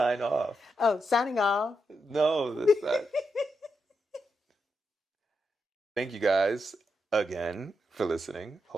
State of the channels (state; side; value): normal; both; correlation 0.84